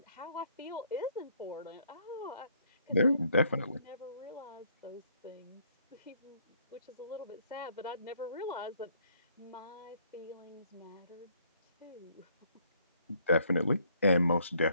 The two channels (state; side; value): inverted; both; correlation -0.66